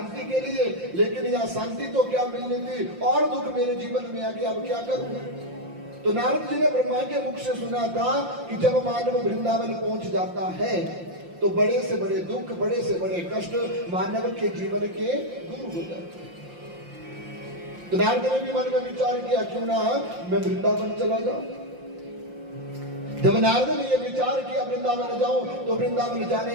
के लिए, लेकिन यह शांति तो क्या मिलनी थी, और दुख मेरे जीवन में आ गया, अब क्या करूं? तो नारद जी ने ब्रह्मा के मुख से सुना था कि जब मानव वृंदावन पहुंच जाता है तो बड़े से बड़े दुख, बड़े से बड़े कष्ट मानव के जीवन के दूर हो जाते हैं। तो नारद ने भी मन में विचार किया, क्यों ना मैं वृंदावन चला जाऊं। जब नारद ने यह विचार किया वृंदावन जाऊं, तो वृंदावन जाने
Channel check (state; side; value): late; left; 5.7 ms